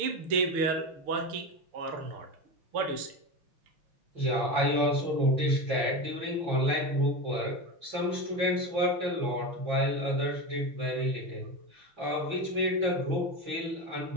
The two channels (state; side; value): late; left; 6.7 ms